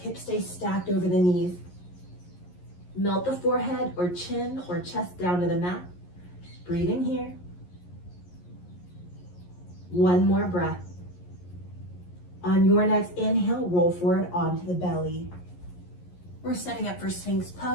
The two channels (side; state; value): right; late; 11 ms